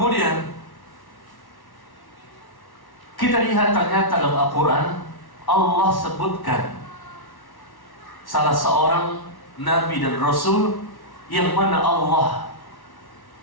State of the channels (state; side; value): late; right; 1.1 ms